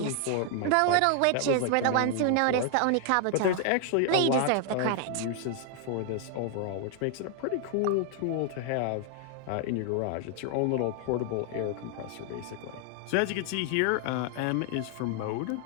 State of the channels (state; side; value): different; both; correlation 0.00